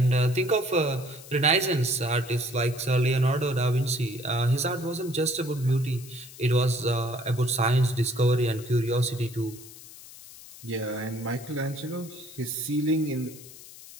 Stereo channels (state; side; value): noise; left; hiss, 17 dB below the sound